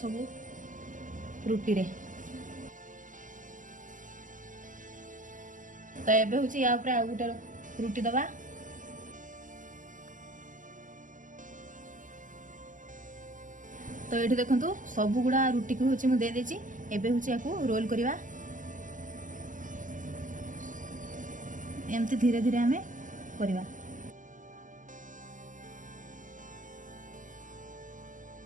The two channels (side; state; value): left; late; 0.38 ms